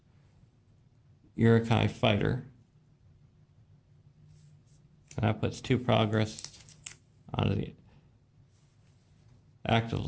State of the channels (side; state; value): both; identical; correlation 1.00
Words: Uruk-Hai fighter. And that puts 2 progress onto the active